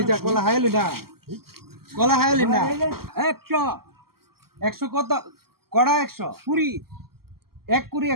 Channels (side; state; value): left; late; 0.94 ms